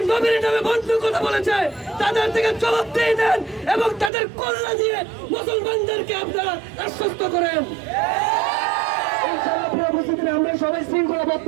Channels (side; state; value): left; drops out; at 4.1 s